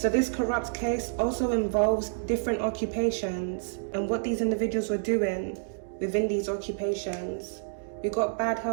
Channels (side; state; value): left; silent; digital silence